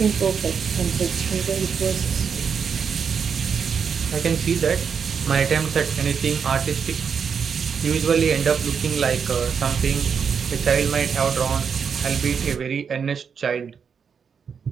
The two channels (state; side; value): quieter; left; 6.6 dB